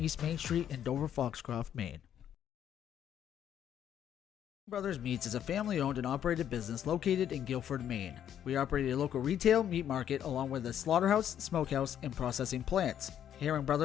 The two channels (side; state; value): right; quieter; 9.9 dB